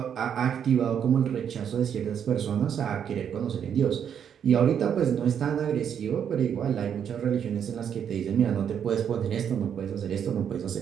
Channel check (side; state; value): left; quieter; 8.4 dB